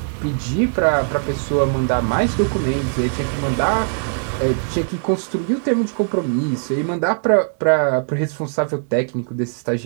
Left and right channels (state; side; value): silent; left; digital silence